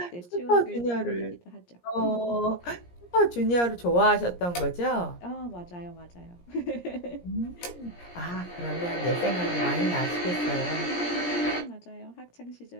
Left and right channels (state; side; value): late; right; 17 ms